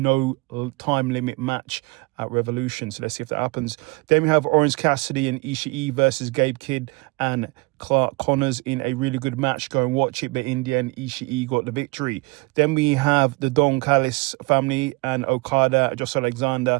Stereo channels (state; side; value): quieter; left; 26.2 dB